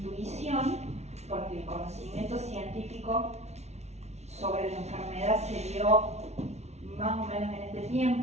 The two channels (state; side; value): late; left; 0.32 ms